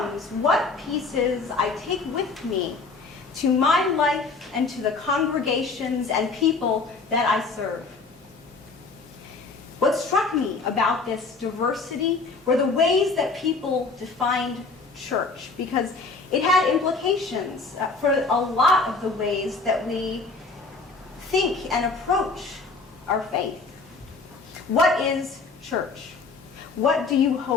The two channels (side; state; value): right; quieter; 4.0 dB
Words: what pieces I take with me to my life and to the congregations and people that I serve. What struck me about this diversity were the ways that people defined church, because it had implications for a lot of the ways that we think and approach our faith. What is church? What do you